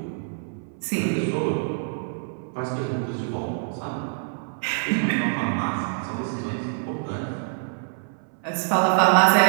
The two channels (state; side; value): silent; left; 61 dB below the other